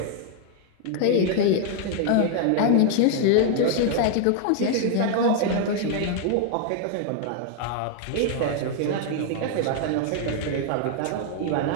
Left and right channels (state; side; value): different; both; correlation 0.00